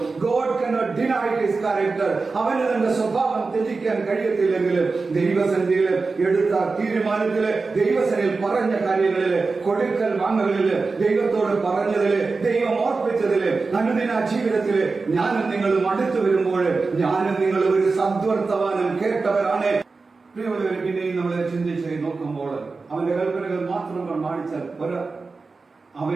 God cannot deny his character. അവന് തന്റെ സ്വഭാവം ത്യജിക്കാൻ കഴിയത്തില്ലെങ്കിൽ ദൈവസന്നിധിയില് എടുത്ത തീരുമാനത്തില്, ദൈവസന്നിധിയിൽ പറഞ്ഞ കാര്യങ്ങളില്, കൊടുക്കൽ വാങ്ങുകളില്, ദൈവത്തോട് പറഞ്ഞതില്, ദൈവം ഓർപ്പിച്ചതില്, അനുദിന ജീവിതത്തില് ഞാനും നിങ്ങളും അടുത്തു വരുമ്പോൾ ഞാനും നിങ്ങളും ഒരു സദ്വർത്തമാനം കേട്ടവരാണ്. പ്രിയമുള്ളവരെ, പിന്നെയും നമ്മളെ ചിന്തിച്ച് നോക്കുമ്പോൾ അവന്റെ കൽപ്പനകൾ മാത്രം പ്രമാണിച്ചാൽ പോരാ.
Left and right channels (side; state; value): left; quieter; 4.1 dB